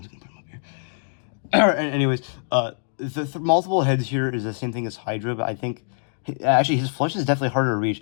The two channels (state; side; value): silent; right; digital silence